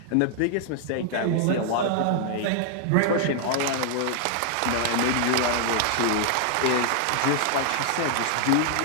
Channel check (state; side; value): different; both; correlation 0.00